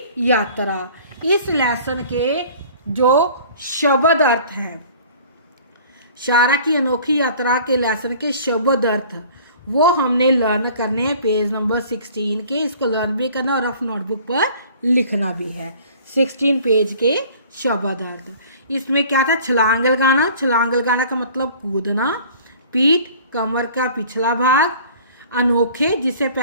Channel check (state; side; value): inverted; both; correlation -0.49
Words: यात्रा। इस लेसन के जो शब्द अर्थ हैं, शारा की अनोखी यात्रा के लेसन के शब्द अर्थ वो हमने लर्न करने हैं पेज नंबर 16 के। इसको लर्न भी करना और रफ नोटबुक पर लिखना भी है। 16 पेज के शब्द अर्थ। इसमें क्या था? छलांग लगाना। छलांग लगाना का मतलब कूदना। पीठ, कमर का पिछला भाग। अनोखे, जिसे